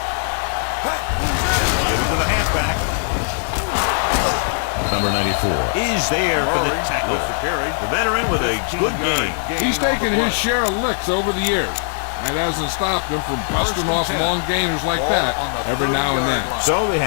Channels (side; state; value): right; silent; digital silence